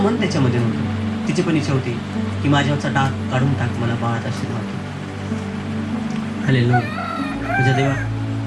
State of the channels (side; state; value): both; identical; correlation 1.00